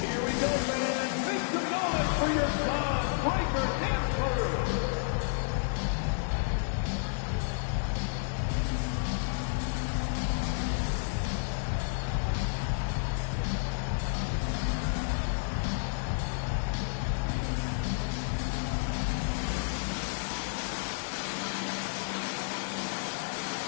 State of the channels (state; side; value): silent; right; digital silence